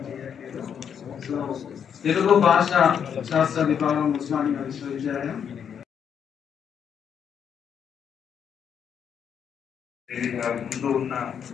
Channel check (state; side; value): quieter; right; 7.9 dB